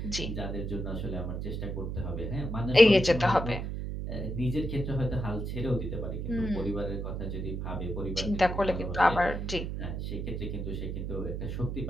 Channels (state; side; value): noise; right; hum, 4 dB below the sound